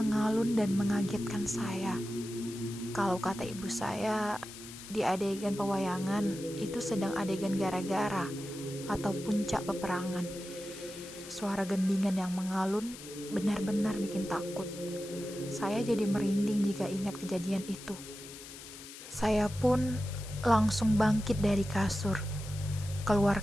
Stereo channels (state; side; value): noise; left; hiss, 14 dB below the sound